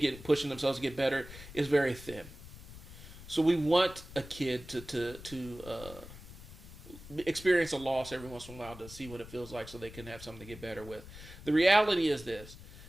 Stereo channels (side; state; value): left; noise; rumble, 16 dB below the sound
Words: to get better is very thin. So we want a kid to experience a loss every once in a while to see what it feels like so they can have something to get better with. The reality is this.